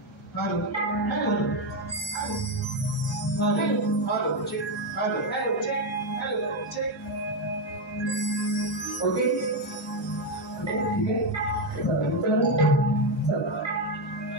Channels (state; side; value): normal; both; correlation 0.07